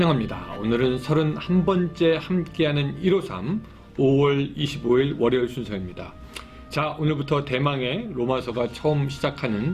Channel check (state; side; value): identical; both; correlation 1.00